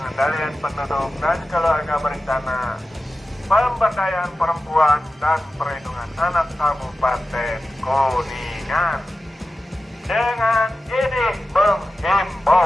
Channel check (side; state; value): both; normal; correlation 0.94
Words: Berencana Pemberdayaan Perempuan dan Perlindungan Anak Kabupaten Kuningan. Dengan ini